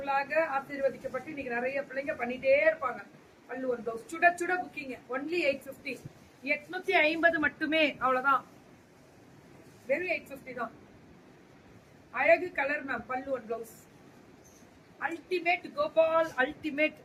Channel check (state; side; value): identical; both; correlation 1.00